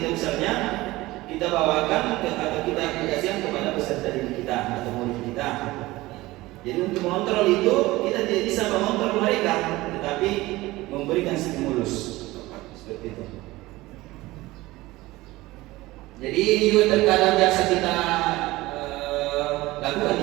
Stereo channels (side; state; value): left; quieter; 19.1 dB